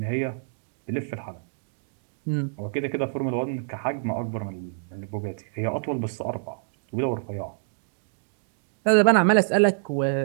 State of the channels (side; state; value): left; silent; digital silence